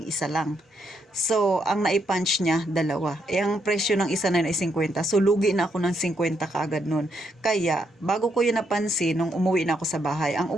isa lang. So, ang naipunch niya, 2. Ang presyo ng isa na yun ay 50. So, lugi na ako ng 50 kaagad nun. Kaya, bago ko yun napansin, nung umuwi na ako sa bahay, ang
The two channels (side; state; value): both; normal; correlation 0.77